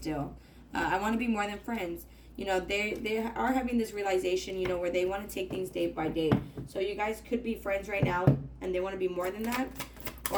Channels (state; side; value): identical; both; correlation 1.00